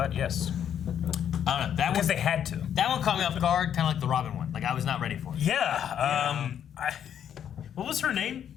yes. I don't know. That Because one, they had to. that one caught me off guard, kind of like the Robin one. Like I was not ready for it. Yeah. What was her name?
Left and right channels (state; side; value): quieter; right; 9.2 dB